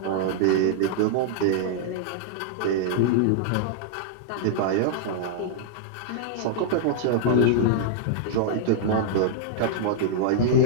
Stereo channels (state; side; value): different; both; correlation -0.01